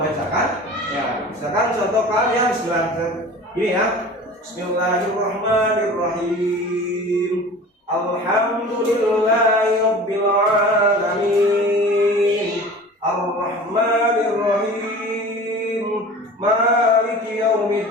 Ya, misalkan contohkan ya ini ya. Bismillahirrahmanirrahim. Alhamdulillahi rabbil alamin. Arrahmanirrahim. Maliki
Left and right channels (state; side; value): normal; both; correlation 0.39